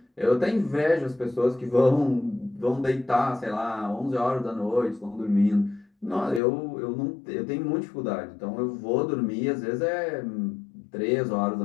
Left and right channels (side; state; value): right; drops out; at 6.4 s